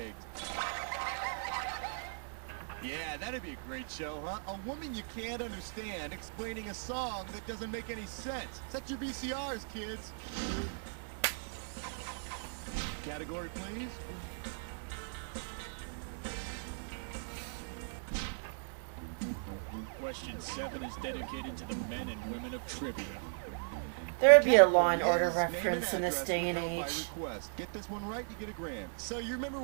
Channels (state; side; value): silent; left; digital silence